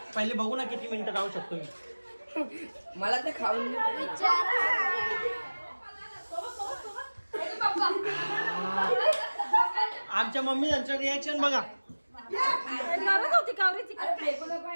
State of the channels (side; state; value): both; inverted; correlation -1.00